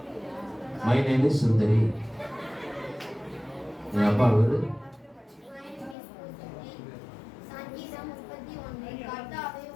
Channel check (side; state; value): right; drops out; at 6.0 s